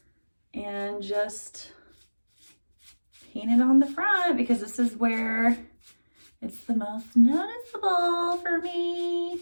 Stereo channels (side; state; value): both; inverted; correlation -1.00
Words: and just paint it on the front because this is where it's the most noticeable for